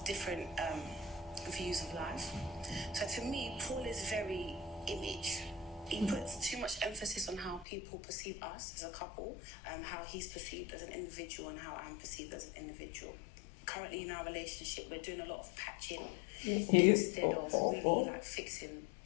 different views of life. So to me, Paul is very image. He puts too much emphasis on how people perceive us as a couple, how he's perceived as an individual and how I'm perceived as an individual. Currently in our relationship, we're doing a lot of patching instead of really fixing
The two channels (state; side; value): drops out; right; at 7.7 s